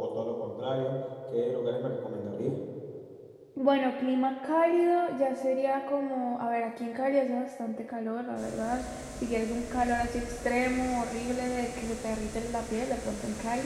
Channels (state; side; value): identical; both; correlation 1.00